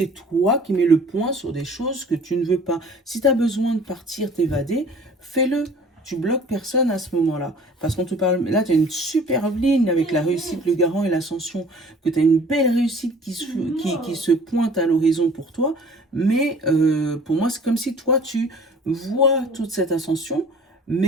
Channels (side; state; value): both; normal; correlation 0.49